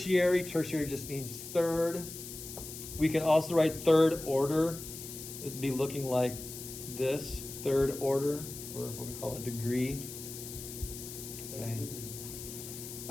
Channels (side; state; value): left; noise; hiss, 10 dB below the sound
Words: Tertiary just means third. We can also write third order. It'd be looking like this, third order, or what we call a degree. Okay.